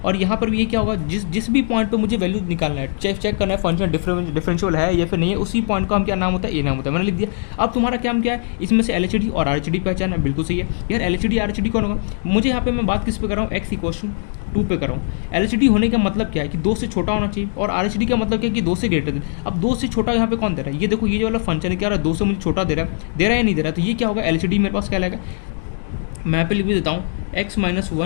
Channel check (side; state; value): right; silent; digital silence